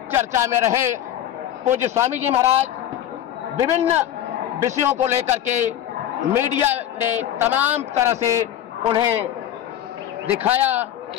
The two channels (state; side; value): quieter; right; 11.2 dB